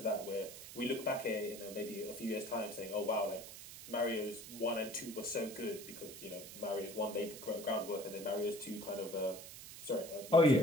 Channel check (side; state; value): right; noise; hiss, 13 dB below the sound